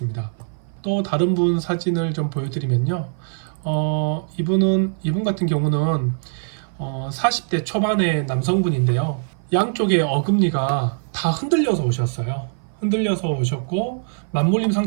또 다른 분 사진을 좀 보여드리면요, 이분 같은 경우는 40대 초반의 남성분인데요, 양쪽의 어금니가 다 흔들려서 오셨어요. 흔들려서 오셨고, 맞물림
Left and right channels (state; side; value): silent; left; 57 dB below the other